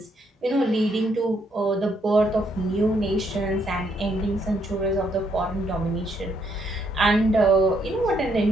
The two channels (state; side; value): normal; both; correlation 0.73